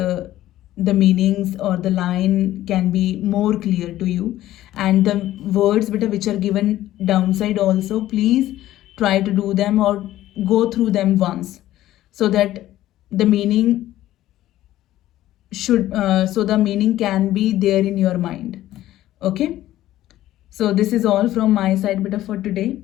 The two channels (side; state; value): right; quieter; 14.2 dB